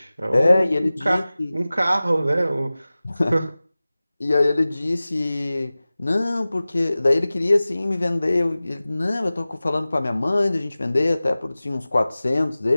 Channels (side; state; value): both; inverted; correlation -0.97